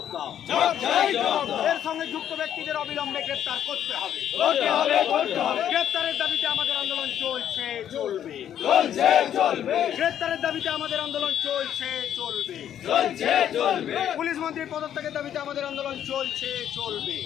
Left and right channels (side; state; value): right; quieter; 10.1 dB